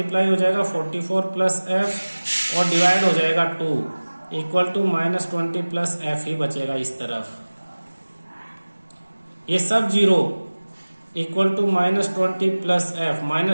हो जाएगा 44 प्लस एफ और डिवाइड हो जाएगा 2 इक्वल टू -20 प्लस एफ ही बचेगा इस तरफ। ये सब 0 इक्वल टू -20 प्लस एफ,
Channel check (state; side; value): inverted; both; correlation -1.00